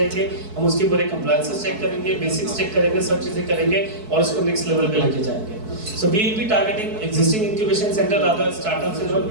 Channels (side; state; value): left; late; 4.6 ms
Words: हम उसके पूरे कंप्लायंसेस चेक करेंगे, बेसिक्स चेक करेंगे, सब चीजें करेंगे और उसको नेक्स्ट लेवल पे लेके जाएंगे। So we will be targeting existing incubation center, rather startups and all.